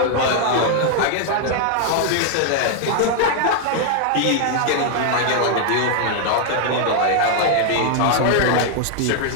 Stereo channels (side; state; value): both; different; correlation 0.00